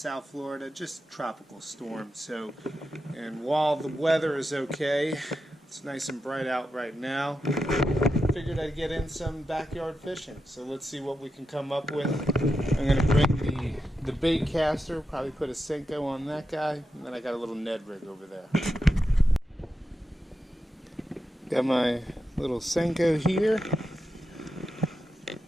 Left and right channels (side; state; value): both; normal; correlation 0.88